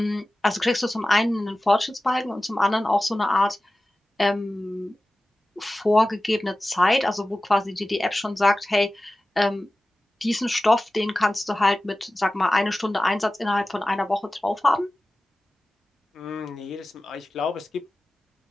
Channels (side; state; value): both; normal; correlation 0.96